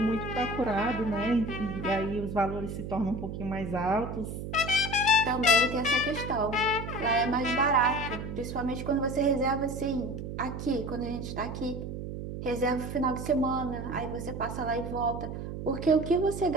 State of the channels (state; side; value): noise; right; hum, 7 dB below the sound